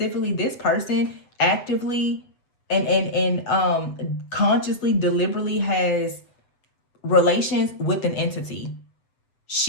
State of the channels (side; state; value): right; late; 7.8 ms